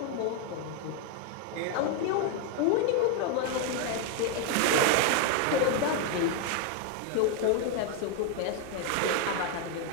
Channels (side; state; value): both; different; correlation 0.01